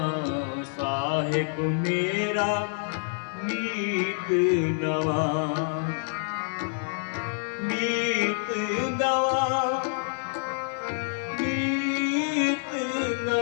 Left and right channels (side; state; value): right; silent; 60 dB below the other